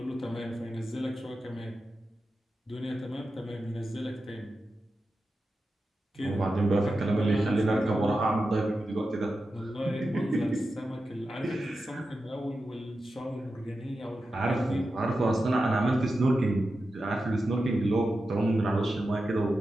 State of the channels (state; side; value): normal; both; correlation 0.91